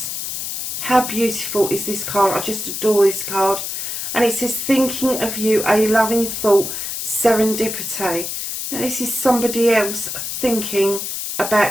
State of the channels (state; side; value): noise; left; hiss, 5 dB below the sound